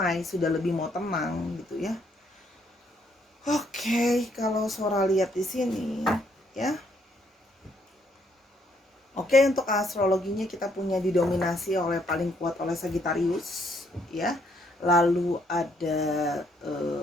sudah lebih mau tenang gitu ya. Oke, kalau Sora lihat di sini ya. Oke, untuk astrologinya kita punya didominasi oleh paling kuat oleh Sagittarius ya. Lalu ada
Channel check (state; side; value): normal; both; correlation 0.70